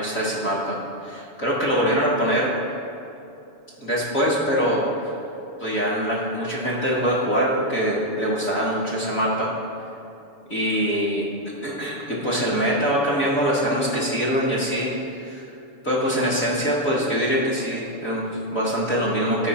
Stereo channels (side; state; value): right; late; 7.1 ms